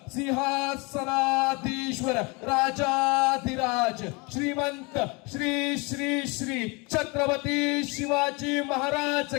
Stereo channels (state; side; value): quieter; right; 28.3 dB